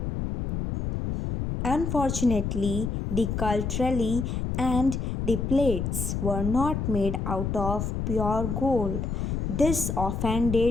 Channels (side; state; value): left; noise; rumble, 2 dB below the sound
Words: Unfortunately, the cutlery and the plates were not made out of pure gold. This